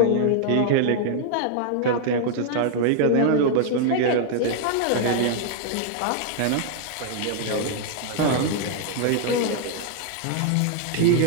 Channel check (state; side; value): different; both; correlation 0.00